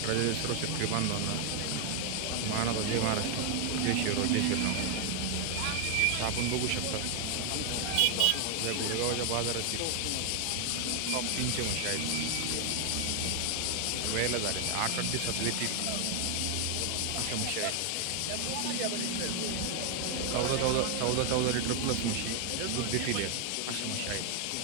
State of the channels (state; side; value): different; both; correlation 0.00